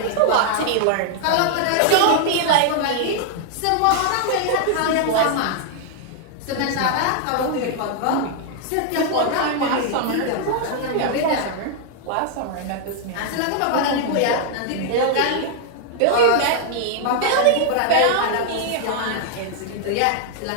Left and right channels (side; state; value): both; different; correlation 0.00